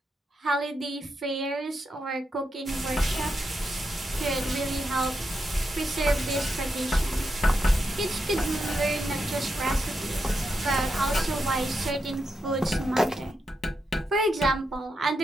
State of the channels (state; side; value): normal; both; correlation 0.85